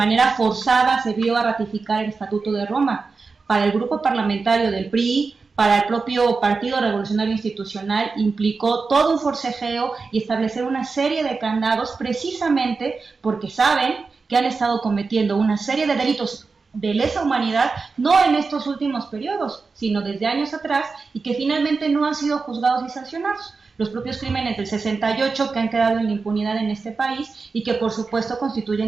forzada se vio a ratificar el Estatuto de Roma. Para el grupo parlamentario del PRI, para el propio Partido Revolucionario Institucional, implicó todo un forcejeo y establecer una serie de candados precisamente porque saben que han estado cometiendo una serie de delitos de lesa humanidad, no en estos últimos periodos, sino desde años atrás, y que finalmente no han sido juzgados y sancionados. Los propios crímenes del 68 que han quedado en la impunidad en este país y que por supuesto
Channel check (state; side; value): quieter; left; 4.4 dB